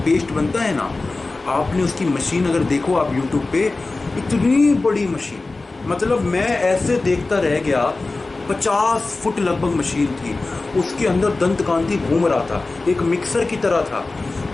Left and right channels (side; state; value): right; quieter; 3.4 dB